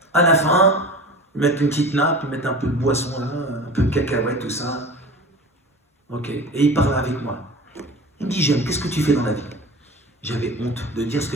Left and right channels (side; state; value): both; normal; correlation 0.35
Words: À la fin, ils mettent une petite nappe, ils mettent un peu de boisson là, un peu de cacahuètes, tout ça. Ok, et il parle avec moi. Il me dit, jeune, qu'est-ce que tu fais dans la vie? J'avais honte de dire ce